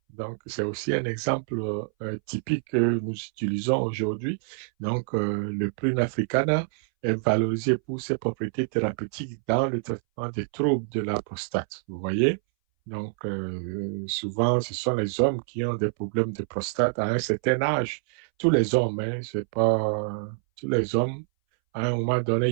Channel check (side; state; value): left; silent; 60 dB below the other